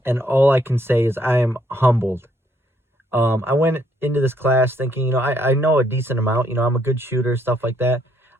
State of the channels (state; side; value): normal; both; correlation 0.70